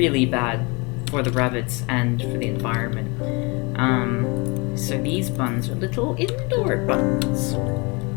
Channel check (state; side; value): quieter; right; 28.8 dB